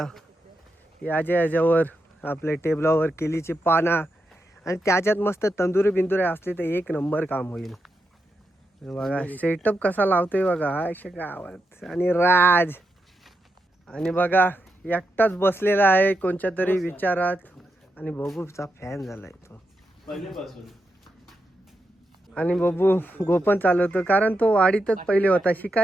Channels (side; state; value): both; normal; correlation 0.85